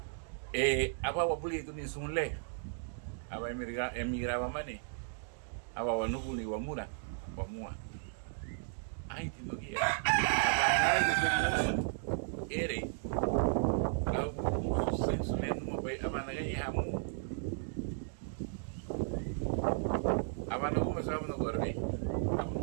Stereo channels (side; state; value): left; silent; digital silence